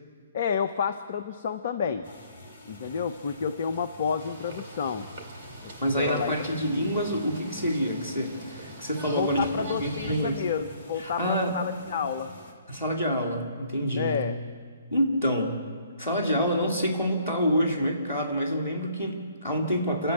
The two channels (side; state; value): both; inverted; correlation -0.61